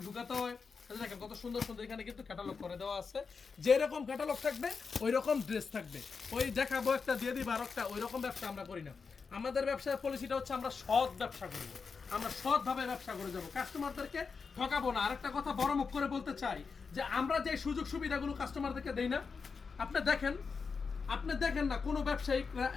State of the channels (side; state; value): right; quieter; 5.2 dB